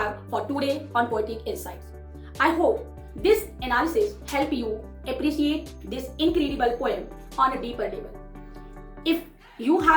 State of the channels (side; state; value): both; identical; correlation 1.00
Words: for today on Poetic Insights. I hope this analysis helped you appreciate this incredible poem on a deeper level. If you